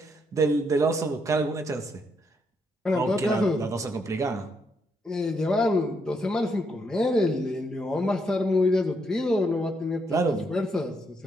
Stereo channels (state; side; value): normal; both; correlation 0.76